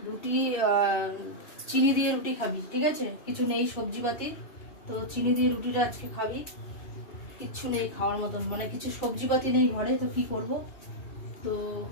রুটি চিনি দিয়ে রুটি খাবি, ঠিক আছে? কিছু নেই সবজিপাতি, তো চিনি দিয়ে রুটিটা আজকে খাবি। কিচ্ছু নেই খাওয়ার মতন, মানে কিছু সবজিপাতি নেই ঘরে, তো কি করব? তো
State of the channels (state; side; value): late; right; 2.8 ms